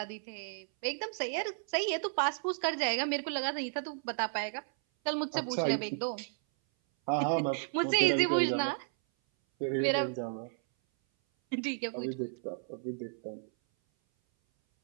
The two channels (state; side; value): silent; left; 56 dB below the other